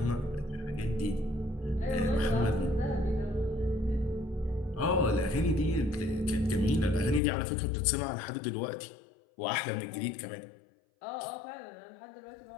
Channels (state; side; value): drops out; right; at 7.2 s